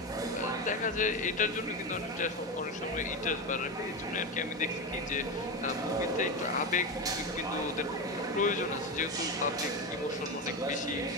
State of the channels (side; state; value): both; normal; correlation 0.17